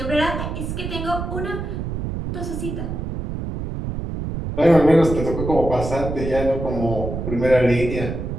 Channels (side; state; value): right; noise; rumble, 5 dB below the sound